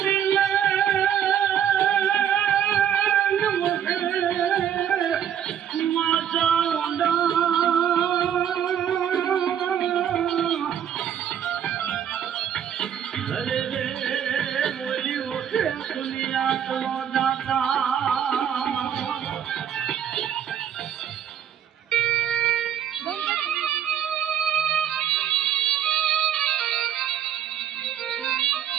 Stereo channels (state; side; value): quieter; left; 9.3 dB